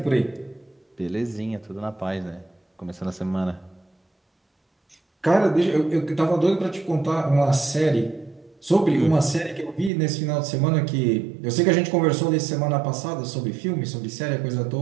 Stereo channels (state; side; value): drops out; left; at 9.9 s